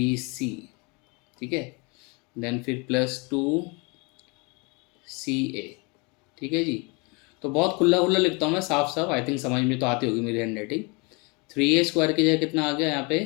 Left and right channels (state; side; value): quieter; right; 30.0 dB